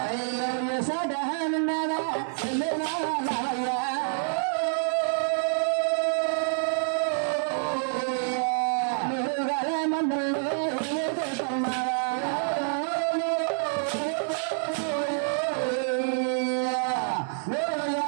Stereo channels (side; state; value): left; silent; 60 dB below the other